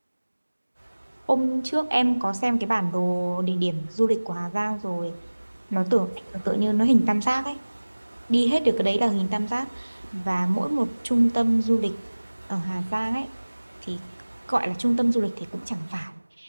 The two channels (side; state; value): both; inverted; correlation -1.00